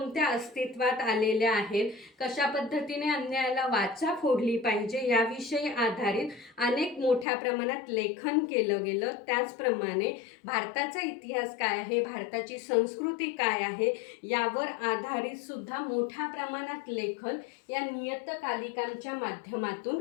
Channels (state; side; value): drops out; right; at 7.2 s